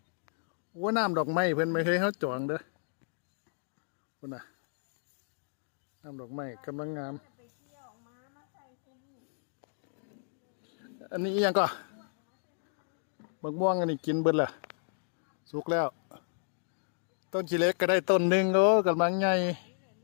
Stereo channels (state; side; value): silent; right; digital silence